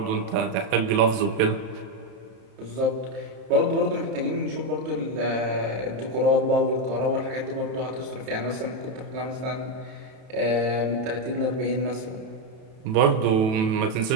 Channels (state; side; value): late; left; 33 ms